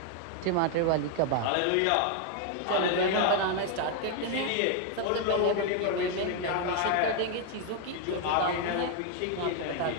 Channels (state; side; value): different; both; correlation 0.00